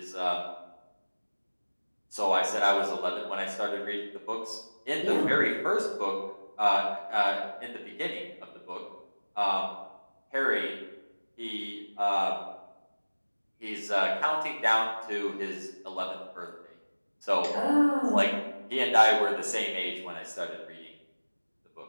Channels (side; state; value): both; inverted; correlation -1.00